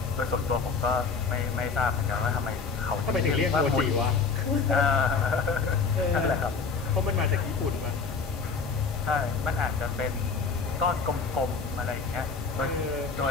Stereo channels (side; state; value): right; quieter; 5.0 dB